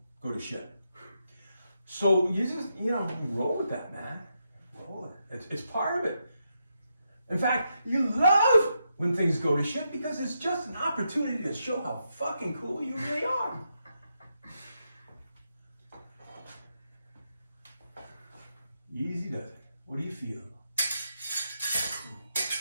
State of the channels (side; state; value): both; inverted; correlation -0.83